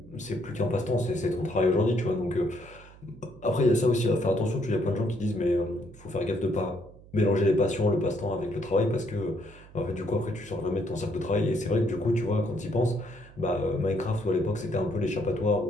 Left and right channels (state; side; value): noise; right; hum, 22 dB below the sound